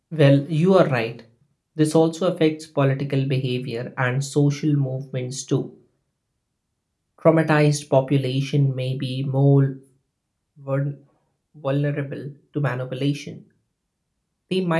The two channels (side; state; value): both; identical; correlation 1.00